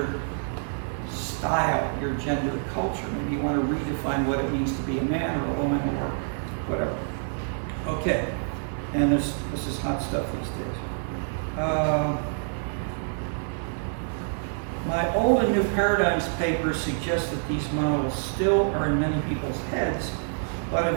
style, your gender culture. Maybe you want to redefine what it means to be a man or a woman or whatever. Okay, and this is hot stuff these days. My Old and New Paradigms paper suggests that these models still are in many people's heads, but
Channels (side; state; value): left; silent; 58 dB below the other